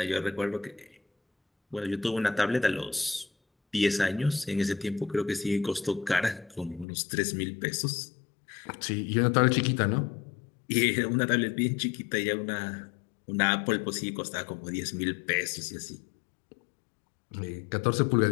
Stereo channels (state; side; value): drops out; right; at 6.9 s